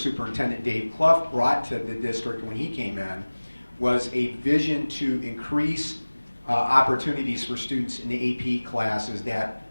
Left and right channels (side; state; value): both; inverted; correlation -1.00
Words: Dave Clough brought to the district when he came in was a vision to increase opportunities for students in the AP classes that